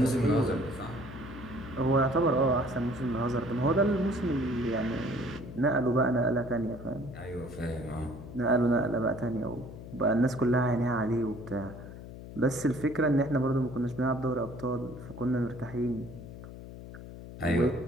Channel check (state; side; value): noise; left; hum, 13 dB below the sound